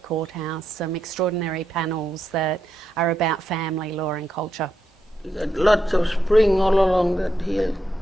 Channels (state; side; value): normal; both; correlation 0.83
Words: Courthouse, some extraordinary panels that are about family, law and culture. You got lots of spring all along that hill,